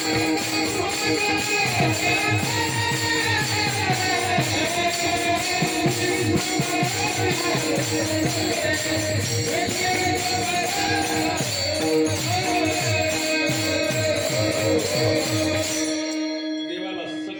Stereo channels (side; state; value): both; identical; correlation 1.00